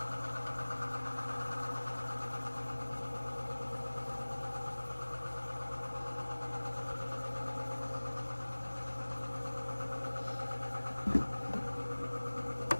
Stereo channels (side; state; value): both; inverted; correlation -1.00